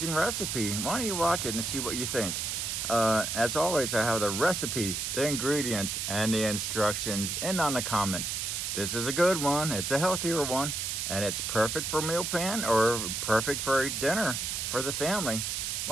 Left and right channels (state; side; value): noise; right; hiss, 2 dB below the sound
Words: recipe. Why don't you watch it and see what you think? As always, I have the recipe, the ingredients, and the instructions in on the comments. This is a good one. It's a healthier one. And it's perfect for meal plan or perfect for dinner for the family.